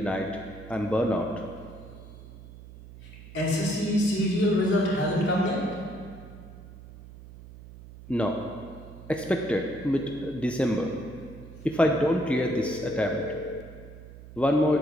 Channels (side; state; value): right; noise; hum, 17 dB below the sound